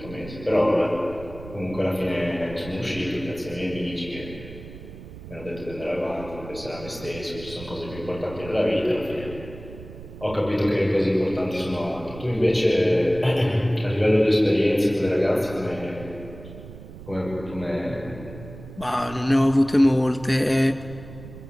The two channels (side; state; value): right; noise; rumble, 15 dB below the sound